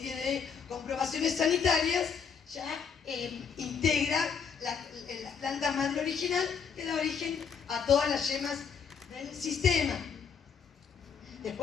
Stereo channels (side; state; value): right; quieter; 6.4 dB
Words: de comprobaciones sanitarias, ya integra la planta madre original, que da origen a todas las yemas del sistema.